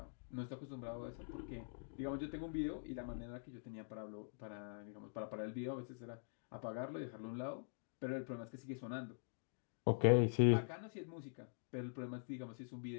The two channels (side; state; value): right; silent; digital silence